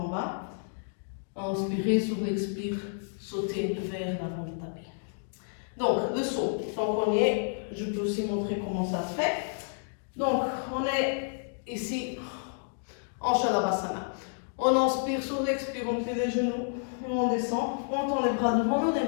bas. Inspirer sur l'expire, sauter vers l'avant du tapis. Donc, le saut. Donc, premier. Je peux aussi montrer comment ça se fait. Donc, on est ici en Shalabhasana. On inspire, sur l'expire, on plie les genoux, et on descend, on tend les bras devant nous, les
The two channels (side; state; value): right; silent; digital silence